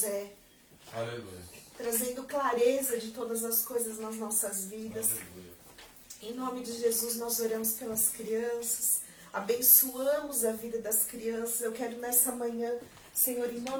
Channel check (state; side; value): identical; both; correlation 1.00